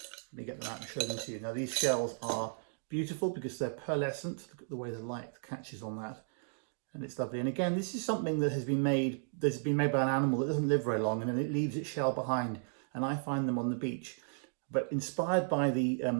Let me get them out and show them to you. Now these shells are beautiful because they're pearlescent. Look at the way the light catches on that. And it's lovely. And again, this is something that has been made by an animal that doesn't live very long, and then it leaves its shell behind. And I find them on the beach. But inspired by the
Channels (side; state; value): left; silent; digital silence